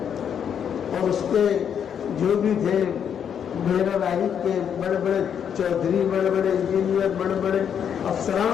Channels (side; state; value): right; quieter; 8.2 dB